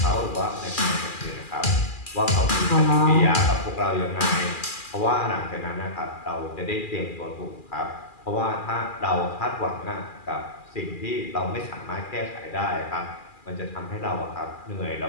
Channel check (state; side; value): late; right; 2.4 ms